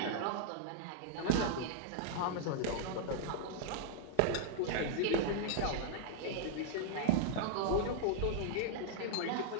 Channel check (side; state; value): both; different; correlation -0.01